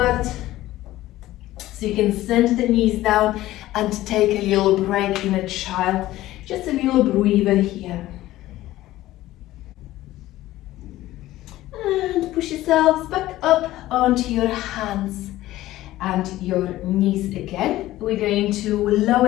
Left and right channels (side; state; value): right; quieter; 15.7 dB